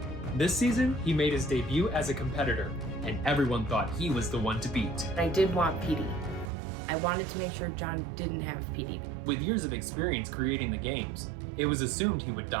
This season, he made his debut as a competitor, and everyone thought he was the one to beat. I did want PD. I wanted to make sure John didn't have PD. With years of experience creating the games, it was assumed he would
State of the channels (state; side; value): drops out; left; at 6.5 s